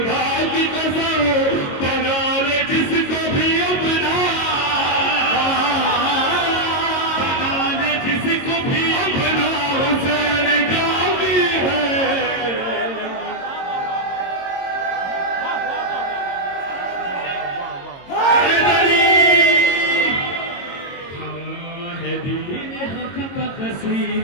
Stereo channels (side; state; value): right; late; 22 ms